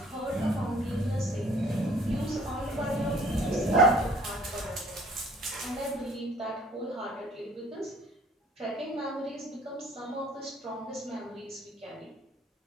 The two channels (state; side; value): normal; both; correlation 0.55